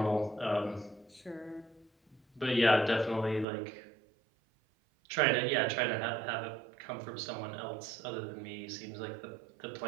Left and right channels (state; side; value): drops out; left; at 3.5 s